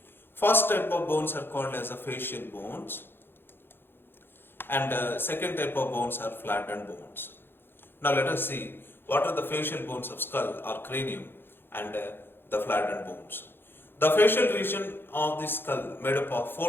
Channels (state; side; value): late; right; 0.10 ms